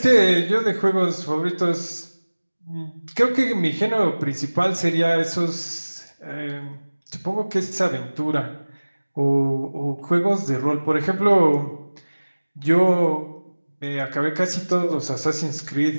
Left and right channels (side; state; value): both; inverted; correlation -1.00